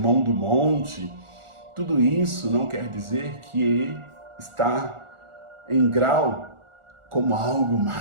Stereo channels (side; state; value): left; late; 1.4 ms